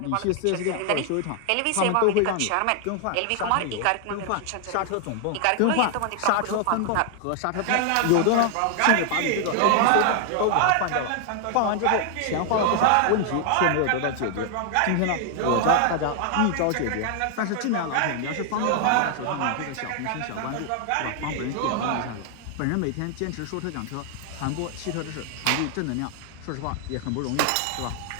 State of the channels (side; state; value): both; different; correlation 0.00